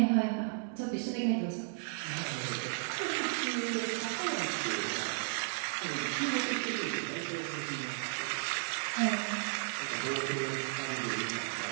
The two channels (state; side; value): silent; left; 55 dB below the other